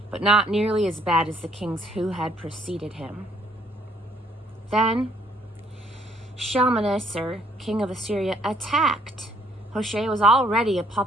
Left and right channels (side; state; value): both; normal; correlation 0.64